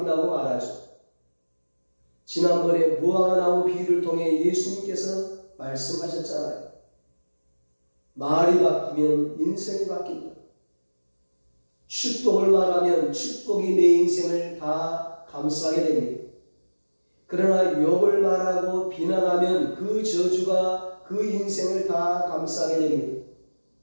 말하죠. 지난번에 무화과 나무 비유를 통해 예수님께서 말씀하셨잖아요. 말이 바뀌면 인생이 바뀐다. 축복을 말하면 축복이 내 인생을 다 감싸게 됩니다. 그러나 욕을 말하고 비난하면 그 저주가 그 인생을 다 감싸게 됩니다.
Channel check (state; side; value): inverted; both; correlation -1.00